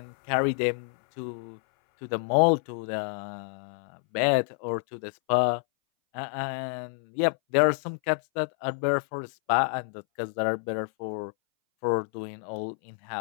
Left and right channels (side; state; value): right; silent; 59 dB below the other